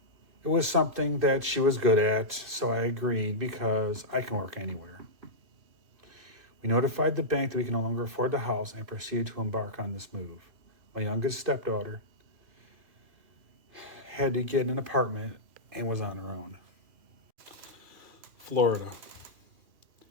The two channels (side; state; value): left; late; 2.6 ms